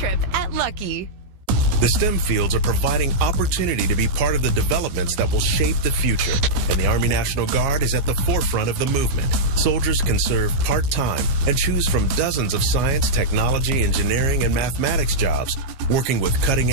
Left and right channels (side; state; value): left; late; 15 ms